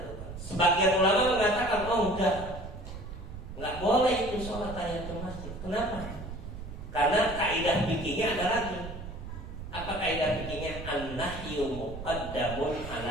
Sebagian ulama mengatakan, oh enggak boleh itu sholat tahiyatul masjid. Kenapa? Karena kaidah fikihnya ada lagi. Apa kaidah fikihnya? An-nahyu muqaddamun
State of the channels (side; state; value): right; noise; rumble, 10 dB below the sound